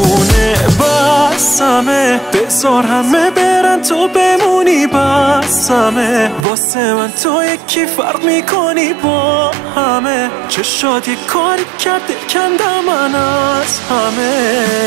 بسمه بذار همه برن تو بمونی بسمه واسه من تو یکی فرق میکنی با همه چشات یک کاری کرده کندم من از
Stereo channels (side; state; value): left; drops out; at 6.5 s